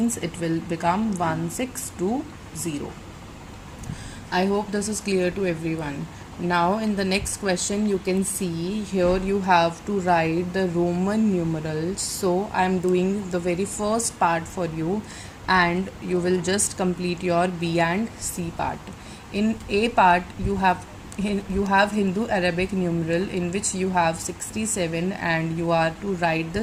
it will become 1620. I hope this is clear to everyone. Now in the next question, you can see here you have to write the Roman numerals. So I am doing the very first part for you, and you will just complete your B and C part. In A part, you have Hindu Arabic numeral, in which you have 67, and you are to write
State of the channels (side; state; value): both; identical; correlation 1.00